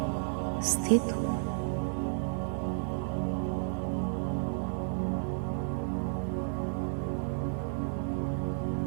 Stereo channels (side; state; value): left; silent; 56 dB below the other